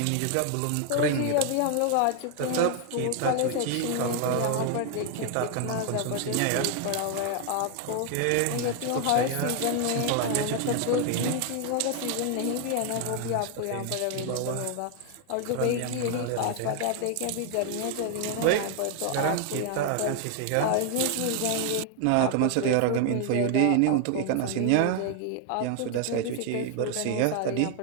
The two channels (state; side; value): different; both; correlation 0.00